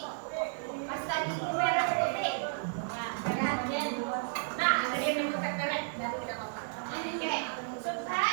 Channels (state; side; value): silent; left; digital silence